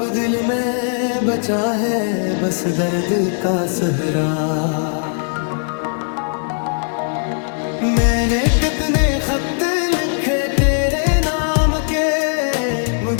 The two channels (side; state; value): right; silent; digital silence